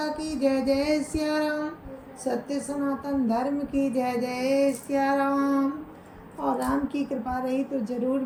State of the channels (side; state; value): both; identical; correlation 1.00